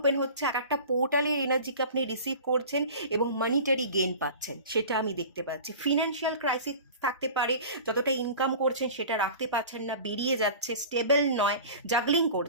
হচ্ছে, এক একটা পোর্টালের এনার্জিকে আপনি রিসিভ করছেন এবং মানিটারি গেইন পাচ্ছেন, সেটা আমি দেখতে পাচ্ছি। ফিনান্সিয়াল ক্রাইসিস থাকতে পারে, যতটা ইনকাম করছেন সেটা রাখতে পারছেন না, বেরিয়ে যাচ্ছে, স্টেবল নয়, জাগলিং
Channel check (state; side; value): inverted; both; correlation -0.39